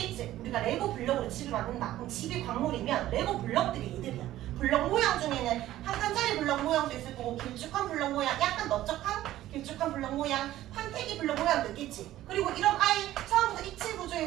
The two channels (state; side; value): quieter; left; 14.3 dB